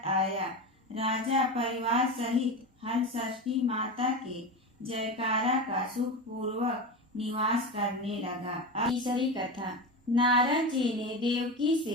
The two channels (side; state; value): both; normal; correlation 0.22